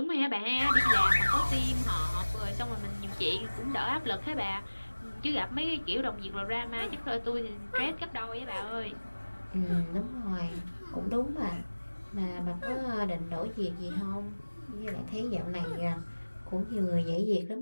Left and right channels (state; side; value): inverted; both; correlation -1.00